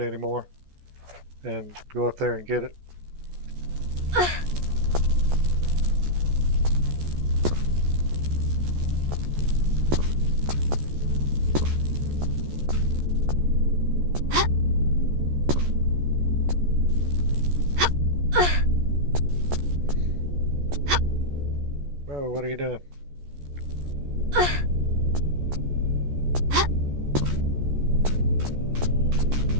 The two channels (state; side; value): late; left; 14 ms